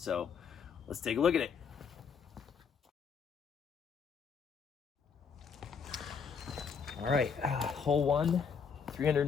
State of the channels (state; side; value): quieter; right; 6.3 dB